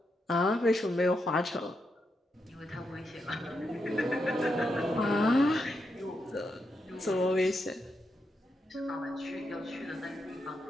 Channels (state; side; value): normal; both; correlation 0.83